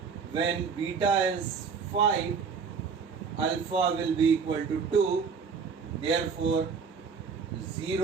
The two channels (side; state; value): left; quieter; 5.8 dB